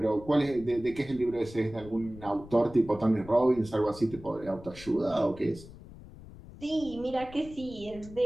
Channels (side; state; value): left; noise; rumble, 17 dB below the sound